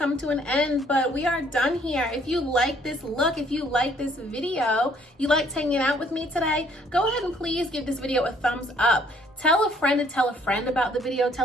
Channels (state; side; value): normal; both; correlation 0.63